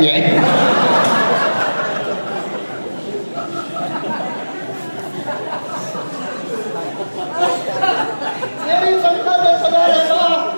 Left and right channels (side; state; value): both; inverted; correlation -1.00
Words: جائے. تیری تنخواہ 10,000 ہے نا,